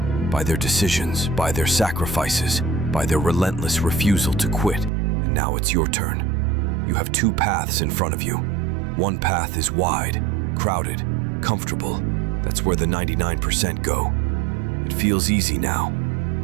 by their decisions, by their sacrifices, by their relentless refusal to quit. And now it's your turn. You have 2 paths in front of you. One path is wide, crowded, comfortable. That's where the 99% go. It feels easy now,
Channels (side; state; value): left; drops out; at 4.9 s